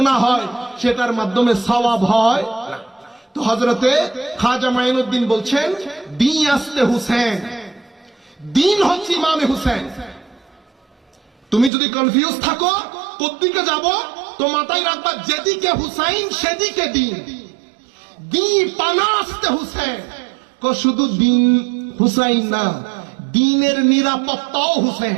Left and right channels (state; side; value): drops out; left; at 11.7 s